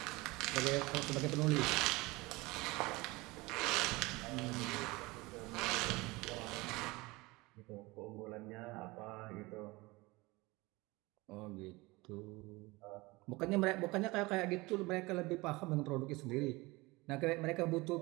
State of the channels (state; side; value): quieter; left; 22.7 dB